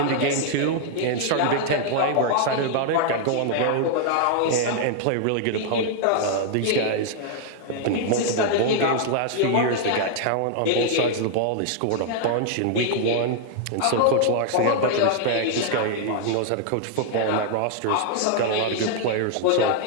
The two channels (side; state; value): both; different; correlation -0.01